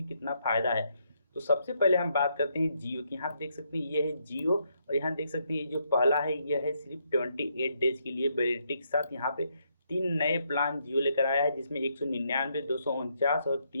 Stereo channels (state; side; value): inverted; both; correlation -0.76